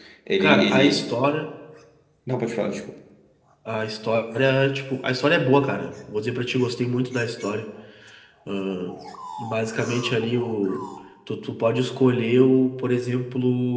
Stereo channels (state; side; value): identical; both; correlation 1.00